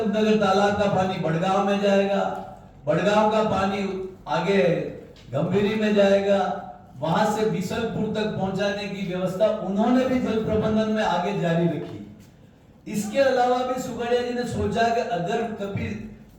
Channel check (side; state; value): both; identical; correlation 1.00